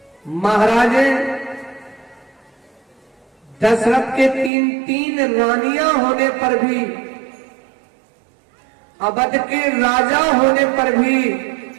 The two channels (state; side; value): drops out; left; at 4.5 s